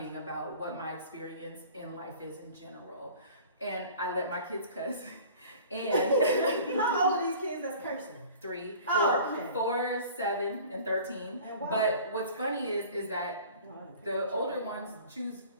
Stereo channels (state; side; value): inverted; both; correlation -0.45